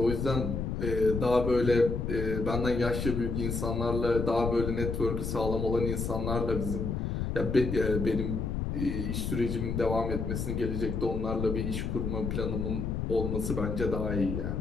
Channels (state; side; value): noise; left; rumble, 2 dB below the sound